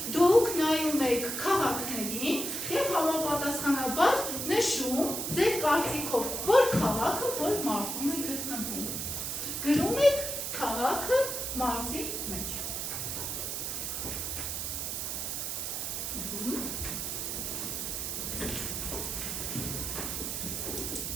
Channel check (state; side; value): noise; right; hiss, 3 dB below the sound